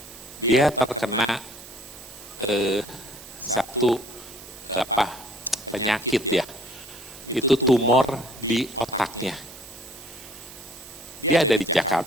dia terkena satu penyakit ya, itu tumor di otaknya. Dia ada di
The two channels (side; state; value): right; noise; hiss, 16 dB below the sound